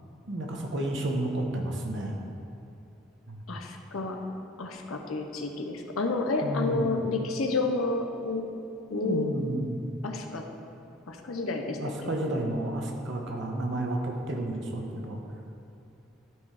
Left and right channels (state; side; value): normal; both; correlation 0.42